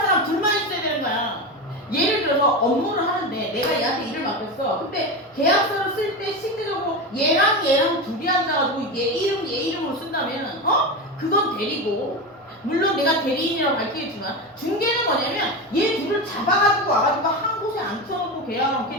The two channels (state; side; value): normal; both; correlation 0.20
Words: 사람 둘만 있어야 되는 거야. 예를 들어서 업무를 하는데 내가 얘한테 일을 맡겼어. 근데 계약서를 쓸 때 실제적으로 얘랑 둘이 앉아가지고 얘 이름으로 쓴다면 그건 대리고, 물론 내가 대리인이라고 밝히겠지만 중개는 뭐냐면 얘 둘을 잡아가지고 와가지고 한 곳에 앉혀놓고 계약하면